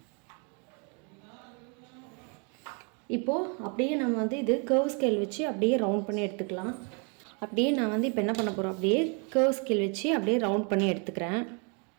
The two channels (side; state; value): left; quieter; 36.6 dB